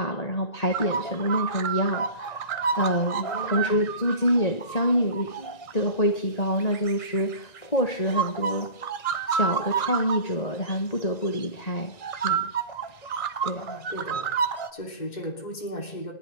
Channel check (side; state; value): right; late; 1.9 ms